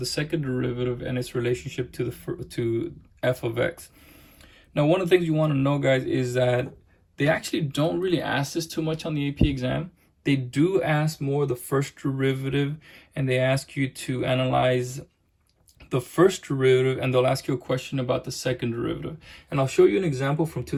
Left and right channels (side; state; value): both; identical; correlation 1.00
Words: second derivative and its relationship to to f of x. Now, one of the things you want to know, guys, is that they actually don't really ask this too much on the AP exam. They do ask more the first derivative, and they ask you to analyze the first derivative, and they'll ask you a question about the second derivative. And I'll show you an example from